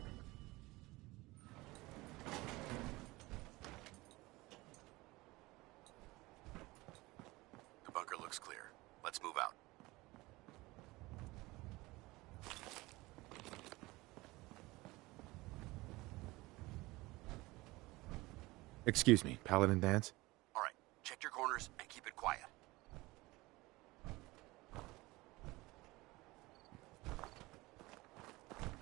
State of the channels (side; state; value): left; quieter; 21.1 dB